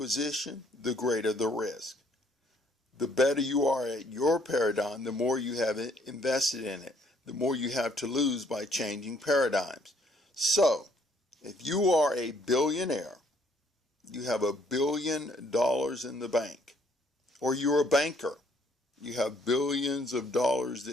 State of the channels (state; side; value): normal; both; correlation 0.65